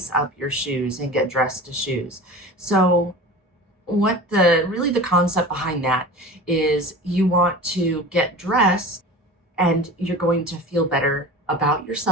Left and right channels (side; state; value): both; normal; correlation 0.36